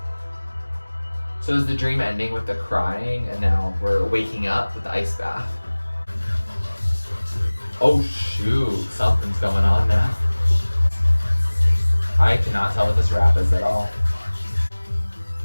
So is the dream ending with the crying, and now we're waking up with the ice bath? Oh shoot, something's going on now. I cannot tell what this rap is at all.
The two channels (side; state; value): both; inverted; correlation -1.00